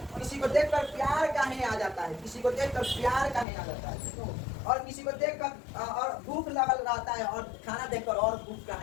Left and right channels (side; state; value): right; drops out; at 3.5 s